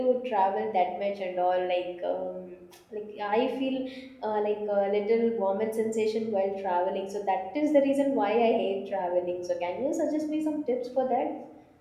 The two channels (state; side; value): identical; both; correlation 1.00